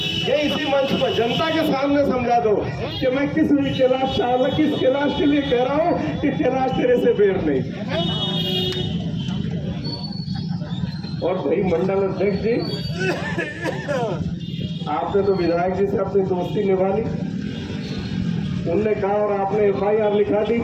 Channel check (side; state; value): both; identical; correlation 1.00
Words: ये इसी मंच पर जनता के सामने समझा दो कि मैं किस कैलाश चावला किस कैलाश के लिए कह रहा हूं कि कैलाश तेरे से बेर नहीं। और भाई मंडल अध्यक्ष जी, आपने तो विधायक जी से अपनी दोस्ती निभा ली, उनने कहा और आपने FIR लिखा दी,